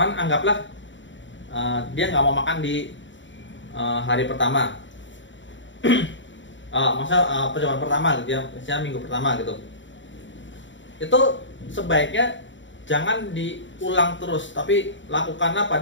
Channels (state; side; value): late; right; 0.54 ms